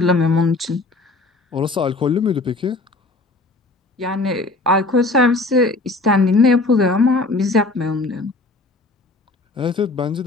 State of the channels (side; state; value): right; quieter; 3.2 dB